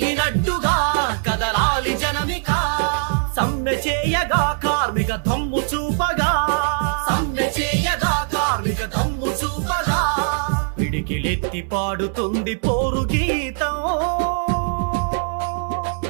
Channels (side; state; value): left; silent; digital silence